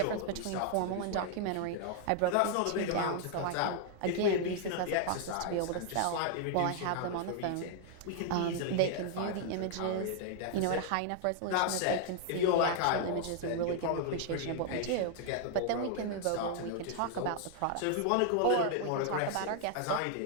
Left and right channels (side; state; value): both; different; correlation 0.00